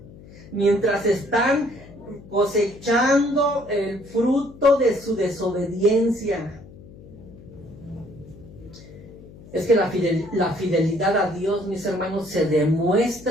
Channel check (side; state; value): left; noise; hum, 19 dB below the sound